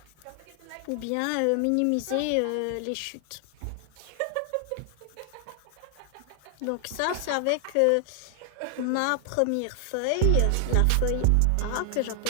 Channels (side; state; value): both; different; correlation 0.00